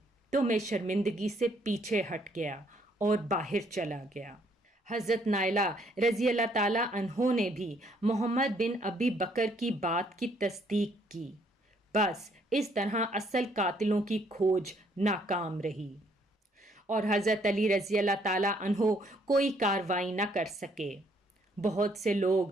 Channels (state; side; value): normal; both; correlation 0.67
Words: تو میں شرمندگی سے پیچھے ہٹ گیا اور باہر چلا گیا۔ حضرت نائلہ رضی اللہ تعالیٰ عنہ نے بھی محمد بن ابی بکر کی بات کی تصدیق کی۔ بس اس طرح اصل قاتلوں کی کھوج ناکام رہی اور حضرت علی رضی اللہ تعالیٰ عنہ کوئی کارروائی نہ کر سکے۔ بہت سے